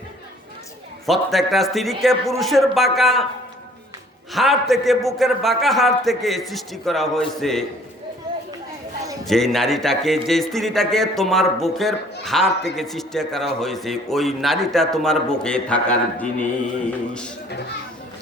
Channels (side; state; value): both; normal; correlation 0.56